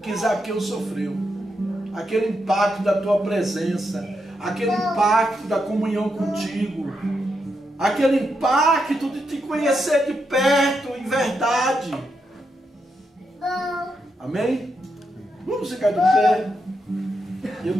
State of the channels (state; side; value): normal; both; correlation 0.83